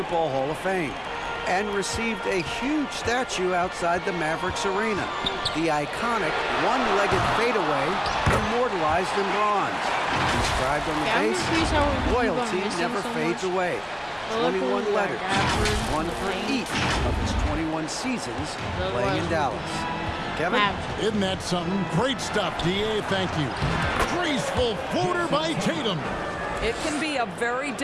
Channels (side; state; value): both; identical; correlation 1.00